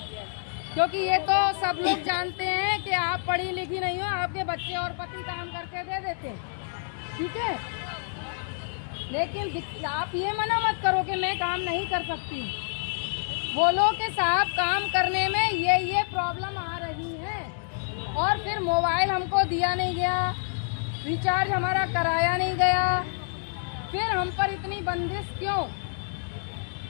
क्योंकि ये तो सब लोग जानते हैं कि आप पढ़ी लिखी नहीं हो, आपके बच्चे और पति काम करके दे देते हैं, ठीक है। लेकिन आप ये मना मत करो कि मैं काम नहीं कर सकती। बोलो कि साहब काम करने में ये प्रॉब्लम आ रही है, और फिर मोबाइल हमको दिया नहीं गया, रिचार्ज हमारा कराया नहीं गया, फिर हम पर इतनी बंदिश क्यों?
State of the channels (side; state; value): right; silent; digital silence